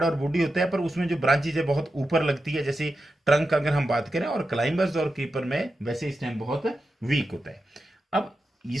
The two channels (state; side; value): normal; both; correlation 0.90